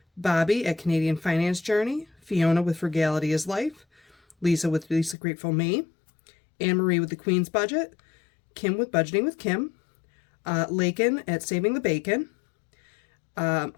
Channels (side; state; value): right; drops out; at 5.2 s